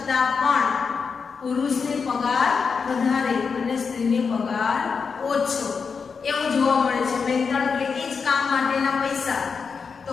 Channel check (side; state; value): right; quieter; 5.5 dB